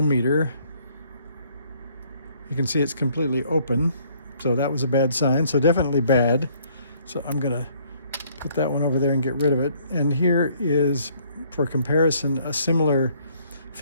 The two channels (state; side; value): inverted; both; correlation -0.63